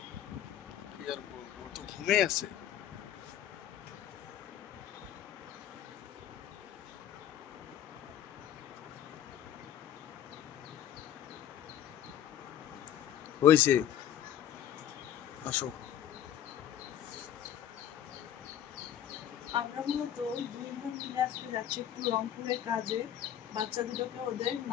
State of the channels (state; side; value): quieter; right; 10.5 dB